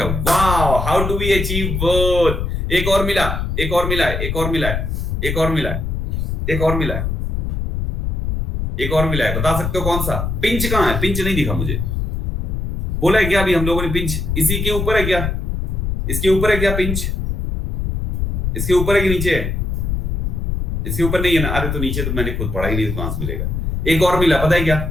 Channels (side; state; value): left; noise; rumble, 1 dB below the sound